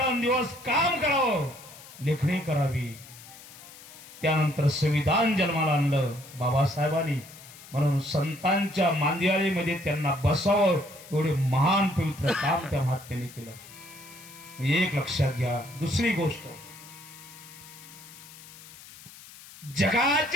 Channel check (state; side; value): noise; left; hiss, 18 dB below the sound